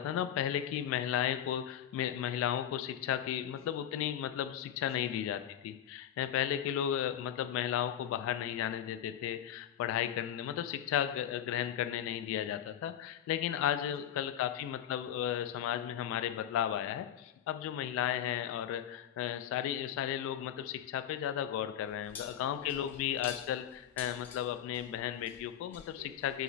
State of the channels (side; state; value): right; quieter; 10.3 dB